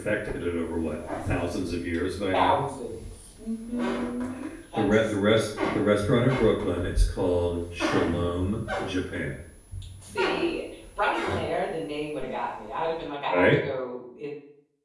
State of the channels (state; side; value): identical; both; correlation 1.00